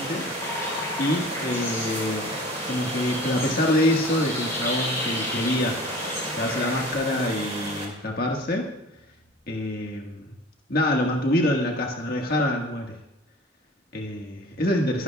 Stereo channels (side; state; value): both; normal; correlation 0.42